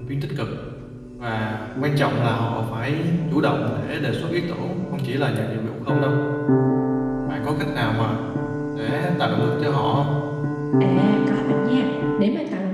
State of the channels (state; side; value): identical; both; correlation 1.00